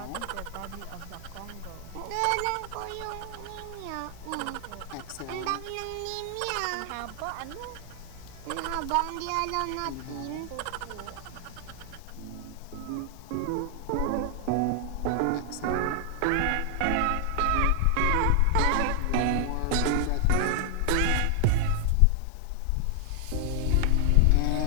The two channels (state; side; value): different; both; correlation 0.00